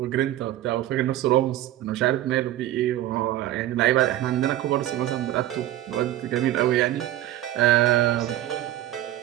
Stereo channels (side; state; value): left; quieter; 14.1 dB